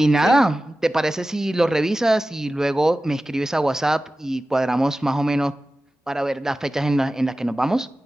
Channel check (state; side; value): normal; both; correlation 0.95